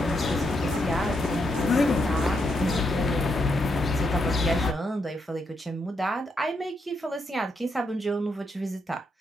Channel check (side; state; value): both; normal; correlation 0.80